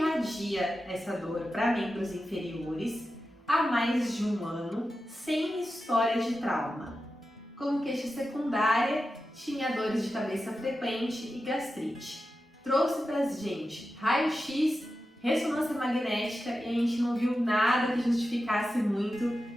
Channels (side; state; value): both; normal; correlation 0.91